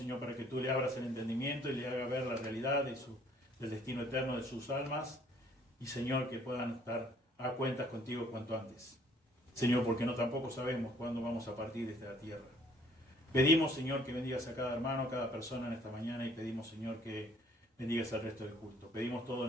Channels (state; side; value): normal; both; correlation 0.60